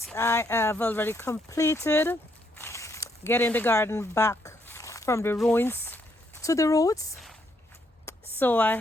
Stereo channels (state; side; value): normal; both; correlation 0.73